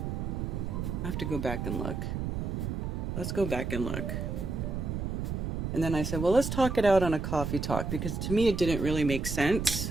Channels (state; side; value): noise; right; rumble, 3 dB below the sound